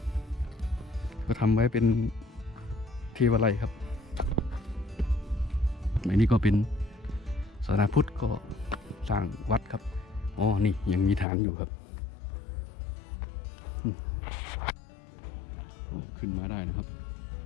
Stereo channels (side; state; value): right; drops out; at 11.2 s